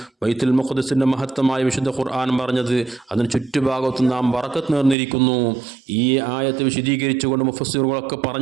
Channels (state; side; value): drops out; left; at 5.0 s